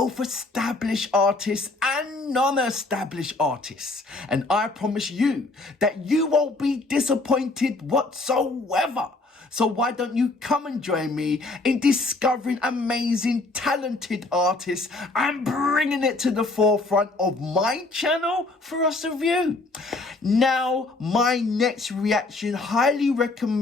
established artists and non-established artists. And I promise you that you won't be disappointed whatsoever. So why don't you come and join me in discovering amazing, talented artists and bringing it to the forefront of my channel for us to view. Now, my next reaction, highly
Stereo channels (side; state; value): right; quieter; 3.2 dB